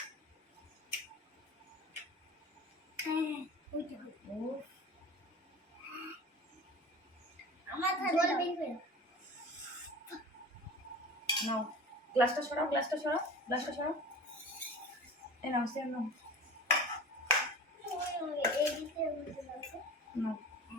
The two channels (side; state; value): both; normal; correlation 0.37